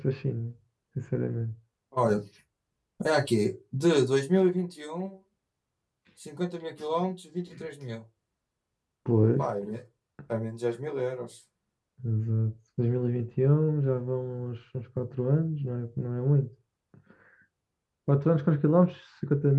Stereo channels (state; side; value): identical; both; correlation 1.00